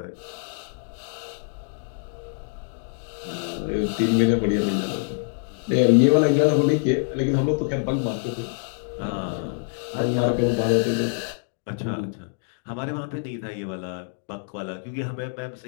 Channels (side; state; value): right; silent; digital silence